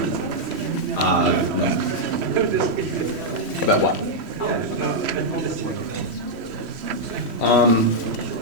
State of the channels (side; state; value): left; late; 3.1 ms